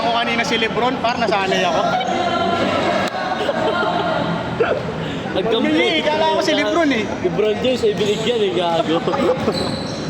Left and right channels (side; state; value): both; identical; correlation 1.00